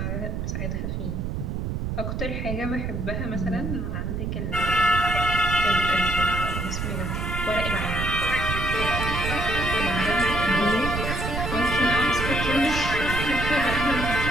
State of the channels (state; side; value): noise; right; rumble, 2 dB below the sound